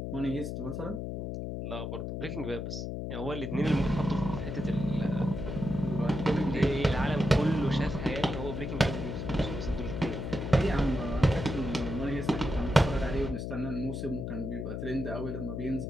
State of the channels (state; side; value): noise; left; hum, 4 dB below the sound